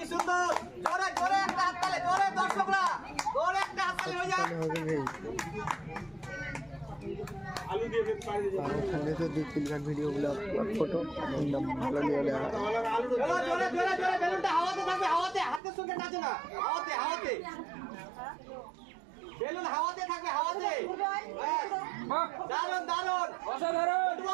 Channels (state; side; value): drops out; left; at 15.6 s